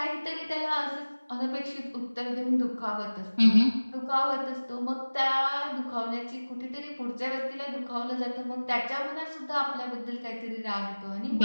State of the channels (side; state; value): both; inverted; correlation -1.00